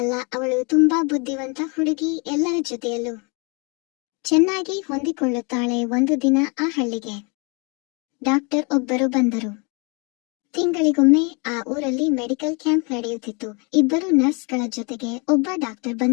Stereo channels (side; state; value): right; quieter; 32.2 dB